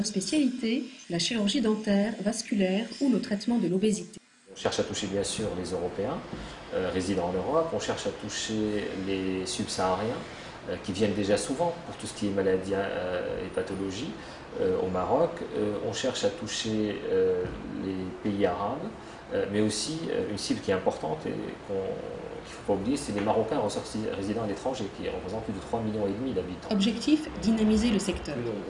spécialités, la chirurgie dentaire, vasculaire ou le traitement de l'obésité. On cherche à toucher bien sûr les Européens résidant en Europe, on cherche à toucher les subsahariens qui viennent déjà souvent pour tout ce qui est maladies et pathologies au Maroc. On cherche à toucher les pays arabes, mais aussi une cible qui est importante et qu'il ne faut pas oublier, c'est les Marocains résidant à l'étranger qui représentent plus de 3,5 millions d'habitants. Objectif, dynamiser le secteur. Plus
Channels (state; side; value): identical; both; correlation 1.00